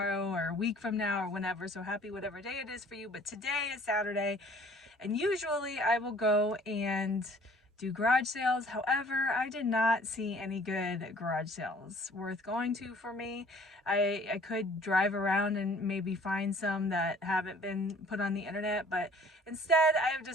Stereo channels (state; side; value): normal; both; correlation 0.53